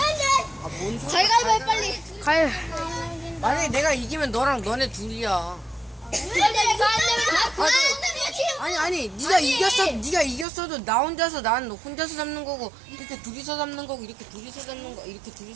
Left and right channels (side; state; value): left; drops out; at 10.5 s